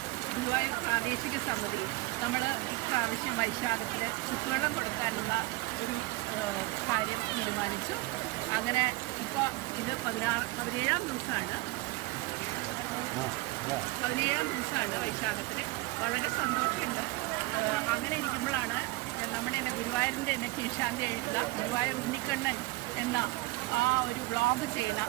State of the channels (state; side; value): quieter; left; 21.3 dB